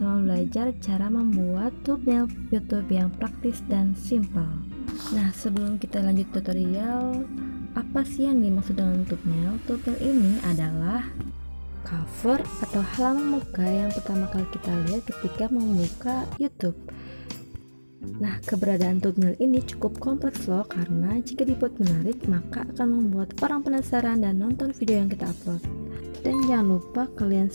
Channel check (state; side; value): inverted; both; correlation -1.00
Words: belajar cara membuat thumbnail YouTube yang praktis dan simpel. Nah, sebelum kita lanjut tutorial, apa sih yang dimaksud dengan thumbnail? Thumbnail ini adalah cover atau halaman muka yang pertama kali kita lihat ketika membuka YouTube. Nah, keberadaan thumbnail ini cukup kompleks loh, karena jika dibuat menarik, maka akan membuat orang penasaran dan nonton video yang kita upload. Dan jangan lupa kalian